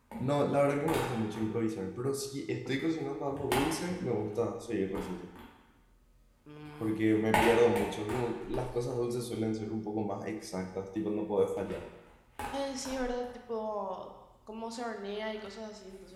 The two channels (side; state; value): both; identical; correlation 1.00